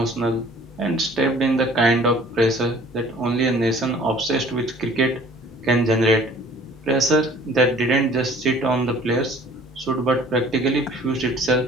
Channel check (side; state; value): both; normal; correlation 0.51